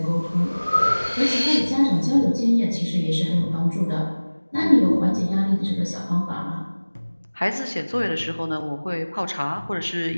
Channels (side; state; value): both; inverted; correlation -1.00